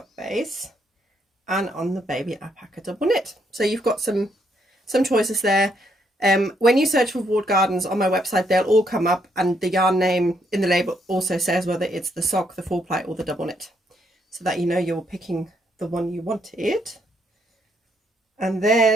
base and on the baby alpaca double knit. So you've got some choices there. When you search for Walled Gardens on my website, they'll all come up, and the yarn name in the label also says whether it's the sock, the 4-ply or the double knit, so that you know you're picking the one you wanted. And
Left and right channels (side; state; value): both; normal; correlation 0.74